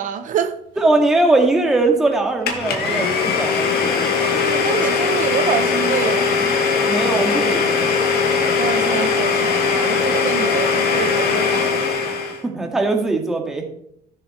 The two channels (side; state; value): both; normal; correlation 0.40